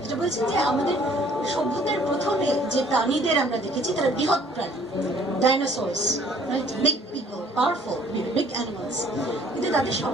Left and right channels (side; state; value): both; normal; correlation 0.57